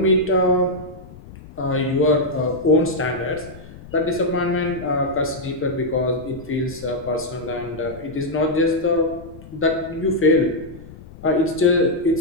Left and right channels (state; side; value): noise; left; rumble, 18 dB below the sound